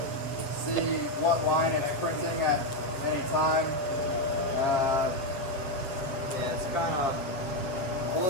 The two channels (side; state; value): right; late; 7.3 ms